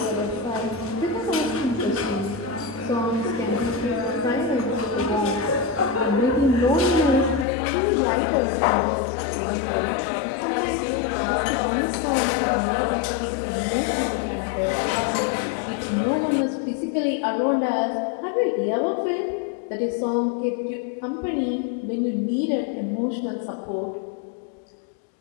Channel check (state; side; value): drops out; right; at 7.5 s